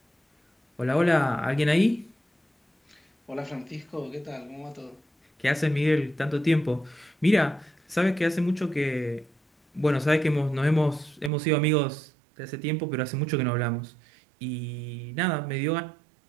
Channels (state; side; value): drops out; left; at 11.3 s